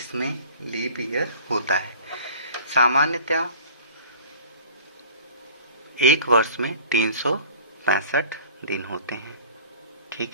लीप ईयर होता है। सामान्यतः एक वर्ष में 365 दिन होते हैं। ठीक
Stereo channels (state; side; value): inverted; both; correlation -0.44